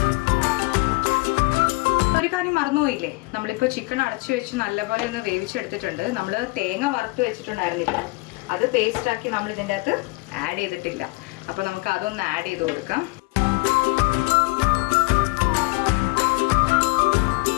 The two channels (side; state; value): right; quieter; 25.4 dB